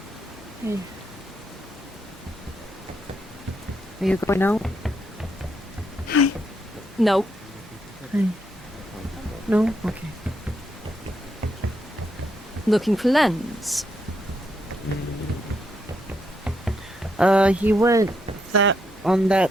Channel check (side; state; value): both; normal; correlation 0.78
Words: Are you going out? No. No? Okay. Looking for Lens. He went on